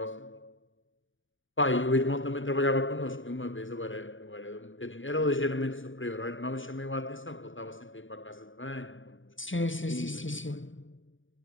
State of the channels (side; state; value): right; late; 0.57 ms